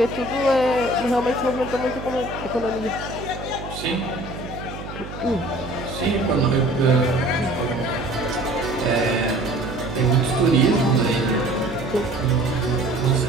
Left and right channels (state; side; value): noise; right; hum, 11 dB below the sound